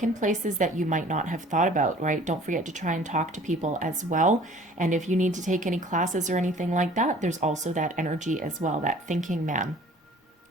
in places that you might not have thought about, right? Don't forget to try and talk to people as well. And if you need to take any classes or anything like that, there's also that energy as well, that thinking man,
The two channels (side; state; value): both; normal; correlation 0.50